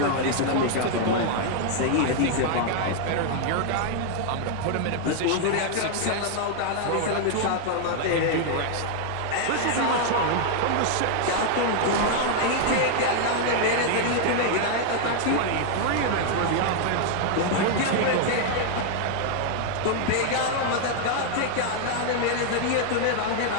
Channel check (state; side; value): different; both; correlation 0.00